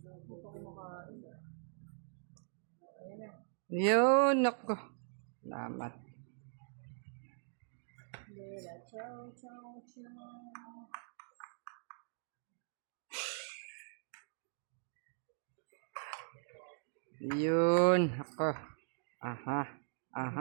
pa kumakain. Ayan na. Yun, nako. Salamat. Bella, ciao, ciao, ciao. Yun, ako. Aha,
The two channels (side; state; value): left; silent; digital silence